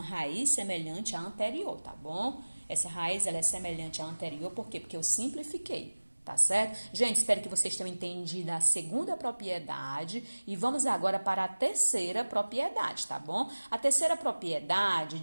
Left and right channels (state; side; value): inverted; both; correlation -1.00